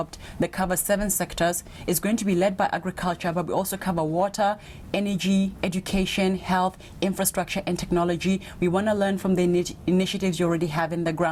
that covers 7 sectors. It's going to be led by agriculture, but we also cover water, energy, education, health, infrastructure, and technology. We want to learn from the initiatives you already have in the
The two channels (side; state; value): both; identical; correlation 1.00